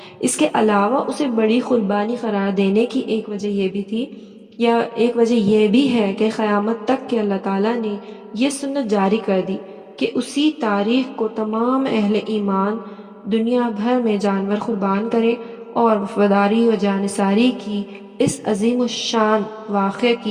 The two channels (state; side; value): identical; both; correlation 1.00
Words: اس کے علاوہ اسے بڑی قربانی قرار دینے کی ایک وجہ یہ بھی تھی، یا ایک وجہ یہ بھی ہے کہ قیامت تک کہ اللہ تعالیٰ نے یہ سنت جاری کر دی کہ اسی تاریخ کو تمام اہل ایمان دنیا بھر میں جانور قربان کریں اور وفاداری و جانثاری کی اس عظیم الشان واقعے